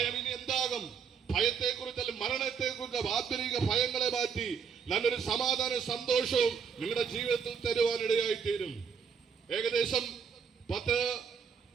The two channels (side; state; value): left; quieter; 6.5 dB